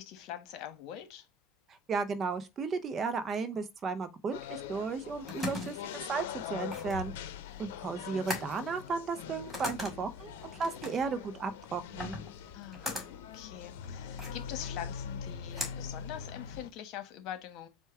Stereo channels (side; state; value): both; normal; correlation 0.50